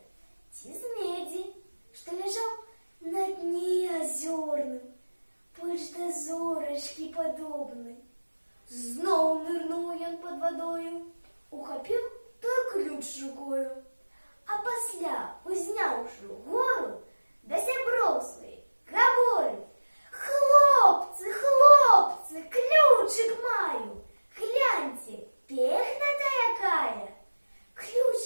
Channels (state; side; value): inverted; both; correlation -1.00